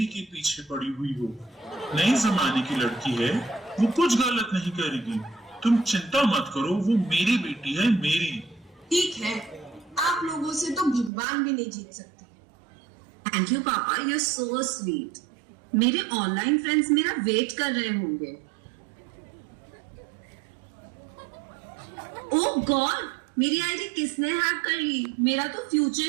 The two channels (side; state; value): left; drops out; at 11.1 s